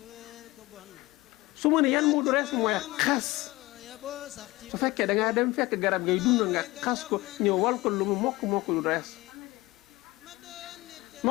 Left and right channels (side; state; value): right; quieter; 20.3 dB